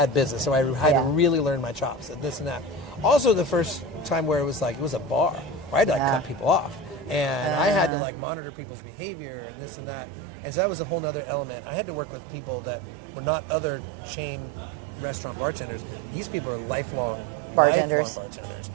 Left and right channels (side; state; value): left; drops out; at 7.9 s